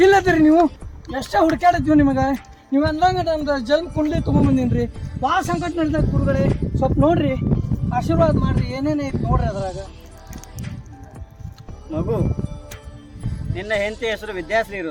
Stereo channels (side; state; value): both; identical; correlation 1.00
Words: ಇಲ್ಲದ್ರಿ ನೀವು ಎಷ್ಟೇ ಹುಡುಕಾಡಿದ್ವಿ ನಿಮಗೆ ನೀವು ಅಂದಂಗ ನಮ್ದು ಜನ್ಮ ಕುಂಡ್ಲಿ ತೊಗೊಂಬಂದಿನ್ರಿ ಭಾಳ ಸಂಕಟ ನಡೆದ ಗುರುಗಳೇ ಸ್ವಲ್ಪ ನೋಡ್ರಿ ಆಶೀರ್ವಾದ ಮಾಡ್ರಿ ಏನೇನು ಐತಿ ನೋಡ್ರಿ ಅದ್ರಾಗ. ಮಗು, ನಿನ್ನ ಹೆಂಡತಿ ಹೆಸರು ವಿದ್ಯಾಶ್ರೀ